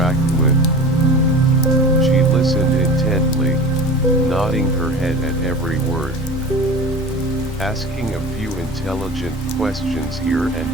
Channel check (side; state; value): both; normal; correlation 0.36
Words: with. She listened intently, nodding her head at every word. Asking a few intelligent questions here and